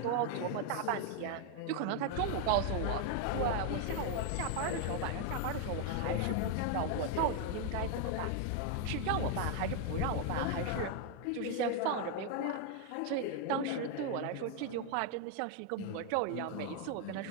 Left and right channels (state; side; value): different; both; correlation 0.00